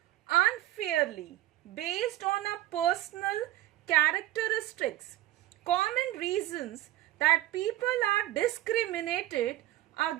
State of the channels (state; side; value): quieter; left; 15.1 dB